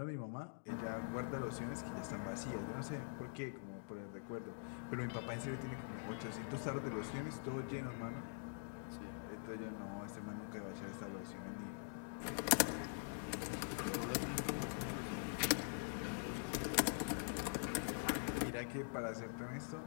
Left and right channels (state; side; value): silent; right; digital silence